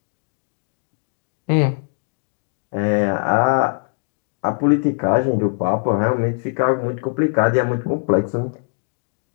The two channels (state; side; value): silent; right; 63 dB below the other